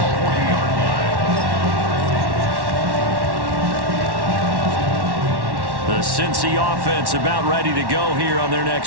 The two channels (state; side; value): late; left; 1.1 ms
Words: 40-yard line. The Cincy offense about ready to go here on their